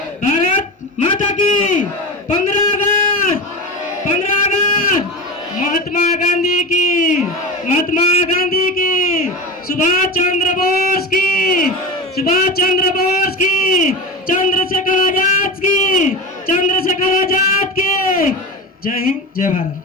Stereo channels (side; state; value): both; normal; correlation 0.25